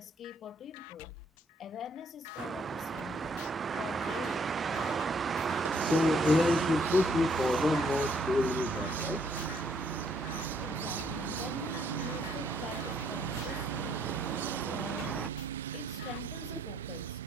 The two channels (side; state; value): both; normal; correlation 0.69